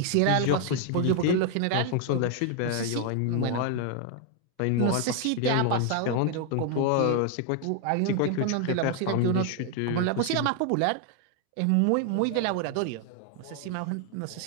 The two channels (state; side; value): different; both; correlation 0.00